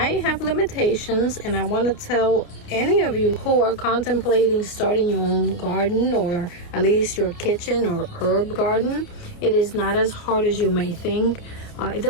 have limitations, and I want to tell any of you who are contemplating starting your own garden, or at least your kitchen or herb garden, it is not as hard as you may think. It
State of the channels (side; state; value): right; late; 28 ms